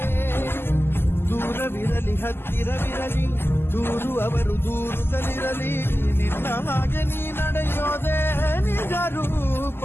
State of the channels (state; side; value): late; right; 0.11 ms